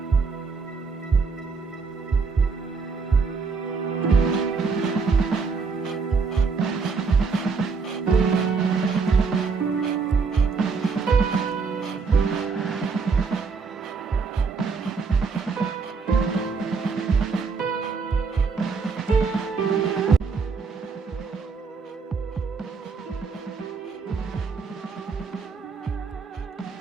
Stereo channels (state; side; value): quieter; left; 5.0 dB